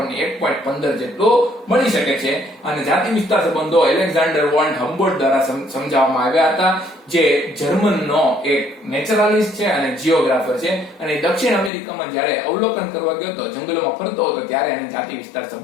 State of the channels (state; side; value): drops out; right; at 11.7 s